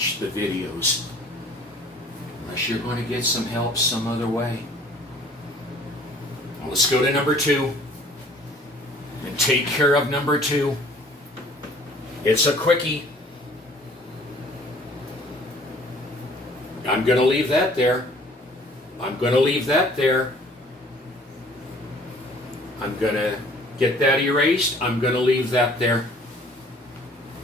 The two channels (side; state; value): both; normal; correlation 0.54